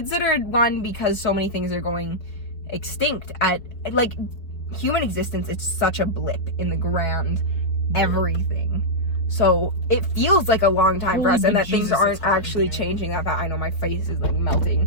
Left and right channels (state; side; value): late; right; 4.4 ms